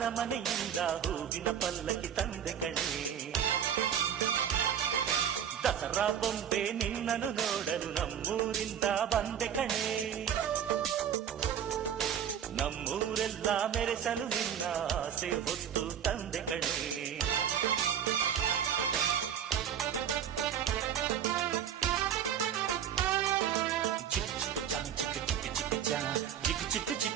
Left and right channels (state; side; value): quieter; left; 8.8 dB